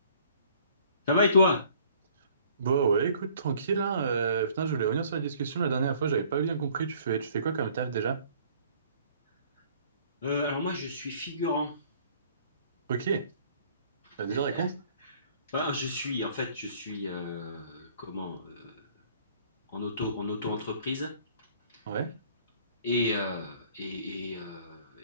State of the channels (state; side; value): inverted; both; correlation -0.56